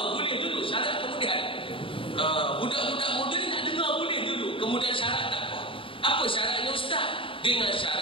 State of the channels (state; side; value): late; right; 0.25 ms